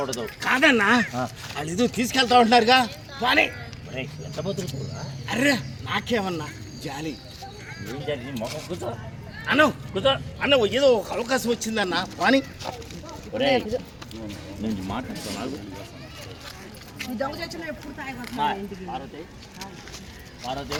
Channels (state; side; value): identical; both; correlation 1.00